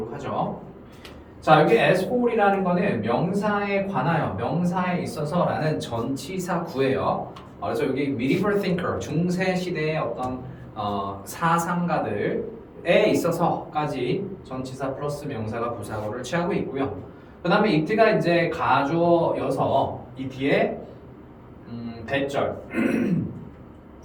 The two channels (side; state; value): both; identical; correlation 1.00